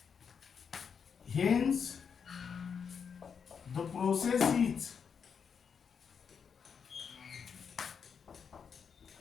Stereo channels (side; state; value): right; quieter; 6.6 dB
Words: hence the process is